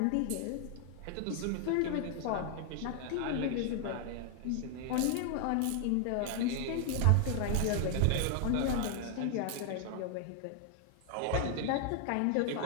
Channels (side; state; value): both; different; correlation 0.00